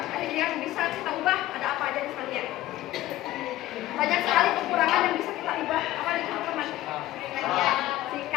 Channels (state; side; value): quieter; right; 15.3 dB